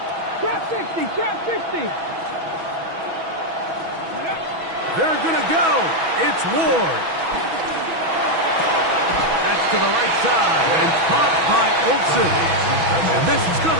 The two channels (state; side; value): late; left; 6.1 ms